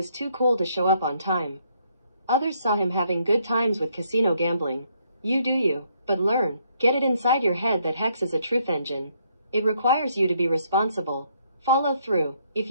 too cool to show up on time. Others saw him having good times with casino gambling. You do you, but learn, get it inside your head that Hex is a truth engine. It requires you to be responsible. Follow through. If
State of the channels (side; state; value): both; inverted; correlation -0.71